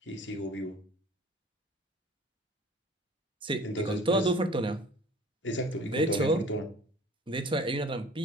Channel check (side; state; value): both; normal; correlation 0.47